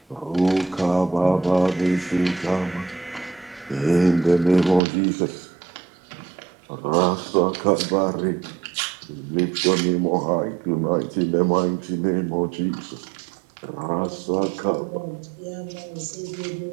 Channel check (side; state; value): left; drops out; at 4.8 s